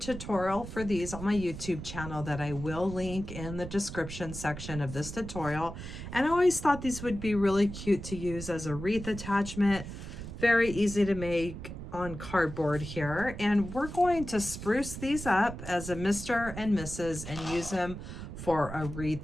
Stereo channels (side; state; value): right; noise; rumble, 9 dB below the sound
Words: for these on my YouTube channel that I will link in the description section of this tutorial. And I always thought these would be really cute to use as a wreath attachment. Very easy to make on cardboard here. And we're going to spruce these up as a Mr. and Mrs. and use them for a